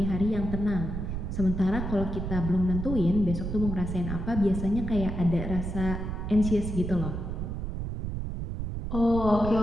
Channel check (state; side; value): noise; right; rumble, 4 dB below the sound